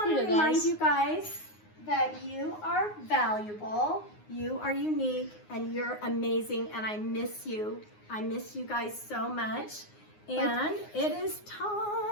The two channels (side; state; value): right; late; 9.6 ms